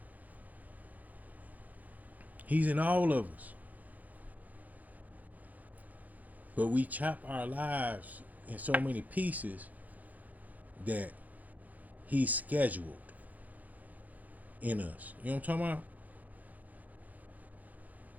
He's in all of us. But we chop our lives in so many pieces that he's scheduled in us. You know what I'm talking about?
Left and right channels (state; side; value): late; left; 0.079 ms